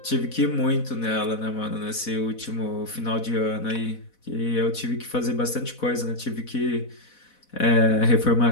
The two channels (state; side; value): late; right; 4.1 ms